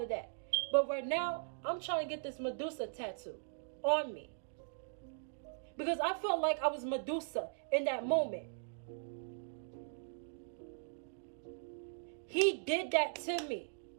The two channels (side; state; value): left; silent; digital silence